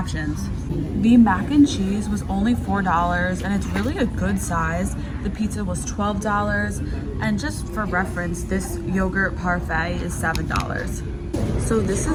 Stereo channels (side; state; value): both; identical; correlation 1.00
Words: The mac and cheese was only $4 and it's really a good size. The pizza was $12, and just for reference, this yogurt parfait is $7. So this